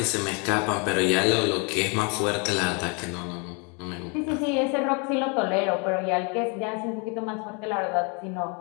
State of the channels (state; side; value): quieter; right; 33.7 dB